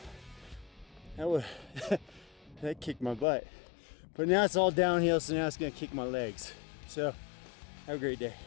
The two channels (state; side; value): drops out; right; at 3.2 s